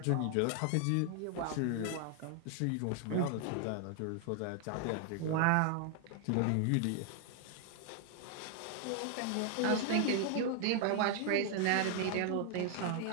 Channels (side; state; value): both; different; correlation 0.00